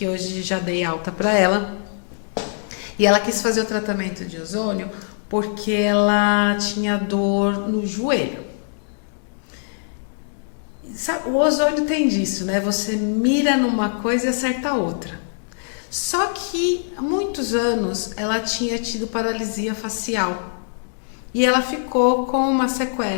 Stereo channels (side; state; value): right; silent; digital silence